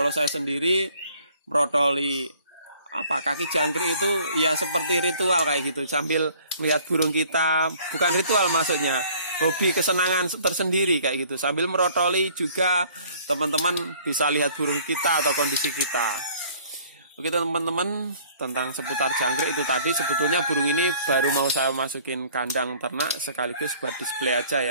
saya sendiri merotoli kaki jangkrik itu ya seperti ritual kayak gitu, sambil melihat burung kita, bukan ritual maksudnya, hobi kesenangan tersendiri kayak gitu, sambil merotoli juga teman-teman bisa lihat burung kita atau kondisi kita. Oke teman-teman, tentang seputar jangkrik itu tadi. Sebetulnya burung ini baru mau saya masukin kandang ternak sekaligus buat display aja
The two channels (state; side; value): inverted; both; correlation -0.55